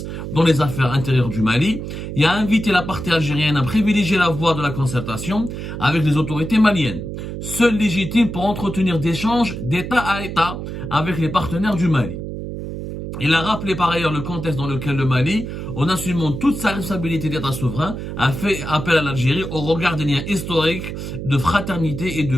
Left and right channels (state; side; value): noise; right; hum, 7 dB below the sound